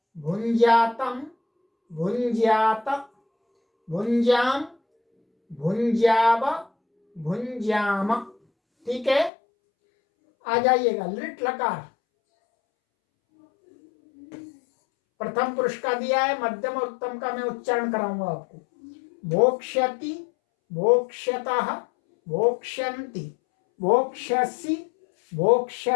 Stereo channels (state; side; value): drops out; right; at 9.3 s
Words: भुंज्यातम भुंज्यात भुंज्याम भुंज्याव भुंज्याम। ठीक है, आ जाइएगा लिट लकार। प्रथम पुरुष का दिया है, मध्यम और उत्तम का मैं उच्चारण कराऊंगा आपको। भोक्ष्यति भोक्ष्यतः भोक्ष्यन्ति भोक्ष्यसि